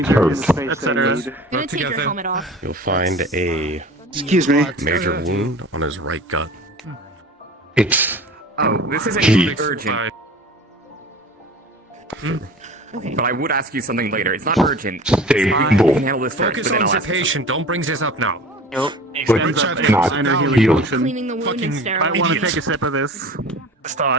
etc. I'm gonna take your helmet off. You'll find a Excuse me. major wound on his right gut. It's. Oh, this isn't Jeez. urgent. Okay. But I would ask you something later. It's not urgent. Stay We cool. can handle this first, Focus but then on I'll the ask you patient. Don't bring this up now. Extends up Richard, the not minor healing healed. potion. Cleaning the wound and sterile. I want to take a sip of this.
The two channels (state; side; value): normal; both; correlation 0.41